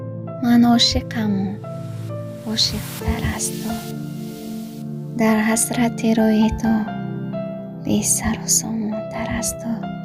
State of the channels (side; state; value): both; identical; correlation 1.00